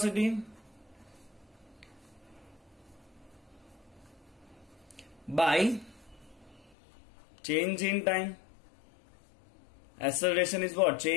by change in time. Acceleration is what?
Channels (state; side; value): drops out; right; at 6.7 s